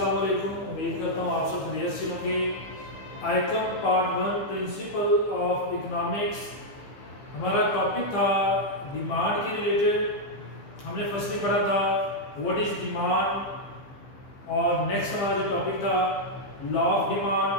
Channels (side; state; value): right; late; 15 ms